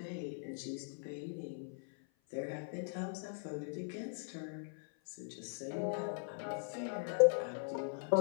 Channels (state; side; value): silent; right; 51 dB below the other